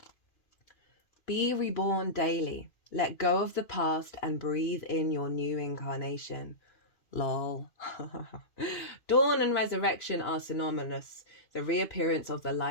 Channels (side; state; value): right; late; 2.5 ms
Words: Be reborn daily. Let go of the past and breathe in your new incarnation. Lol. Dawn and resurrection are synonymous. The reappearance of the